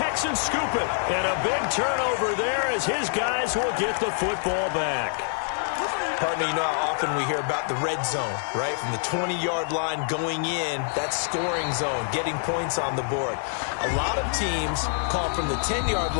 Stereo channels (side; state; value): right; silent; 55 dB below the other